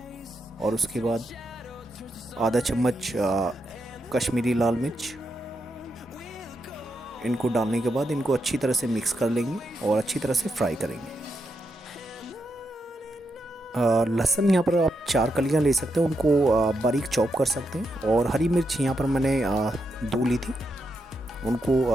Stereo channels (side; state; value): both; normal; correlation 0.83